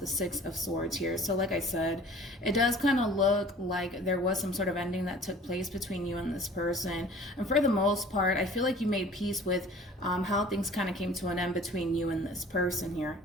6 of Swords here. So like I said, it does kind of look like there was some sort of ending that took place between you and this person. And for the most part, I feel like you made peace with how things kind of came to an end between you and this person here.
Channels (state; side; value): normal; both; correlation 0.47